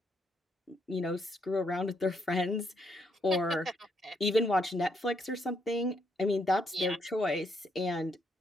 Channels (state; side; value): normal; both; correlation 0.75